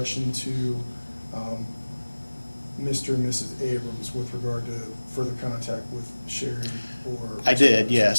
to Mr. and Mrs. Abrams with regard to further contact with Sherry or? I did, yes.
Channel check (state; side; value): inverted; both; correlation -1.00